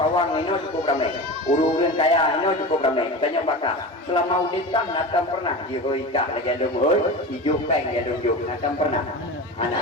ini cukup ramai, urun kaya ini cukup ramai. Tanya pakar, selama UDK nakam pernah dihoika lagi ada muhur, hijau peng ada hijau, nakam pernah.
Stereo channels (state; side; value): normal; both; correlation 0.28